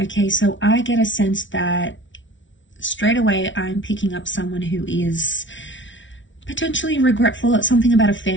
so I get a sense that straight away I'm picking up someone who is potentially regretful at something about a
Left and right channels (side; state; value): right; late; 0.56 ms